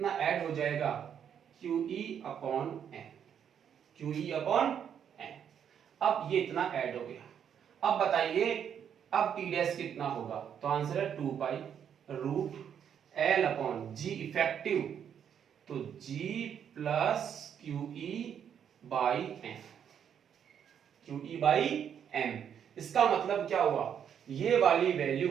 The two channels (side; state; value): left; quieter; 8.5 dB